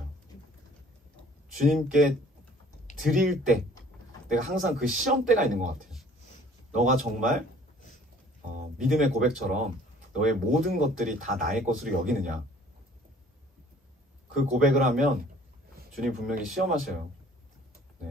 주님께 드릴 때 내가 항상 그 시험대가 있는 것 같아요. 너가 정말 믿음의 고백처럼 너의 모든 것들이 다 나의 것으로 여기느냐. 그 고백을 하면 주님 분명히 시험하셔요.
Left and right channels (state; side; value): normal; both; correlation 0.53